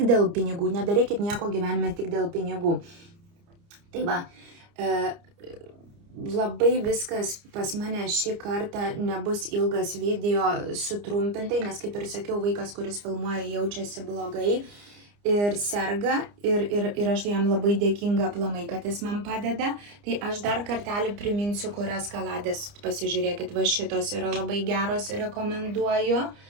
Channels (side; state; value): left; late; 29 ms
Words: dėl pinigų. Nedarykit nieko gyvenime tik dėl pinigų. Tai va, labai viskas pas mane šį kartą nebus ilgas video sutrumpintai, nes kaip ir sakiau, vaikas, kuris filmuoja, jaučiasi blogai. Ir serga, ir aš jam labai dėkinga aplamai, kad jis man padeda. Tai aš dar kartelį priminsiu, kurias kaladės pasižiūrėkit. Va šitos yra labai geros, rekomenduoju.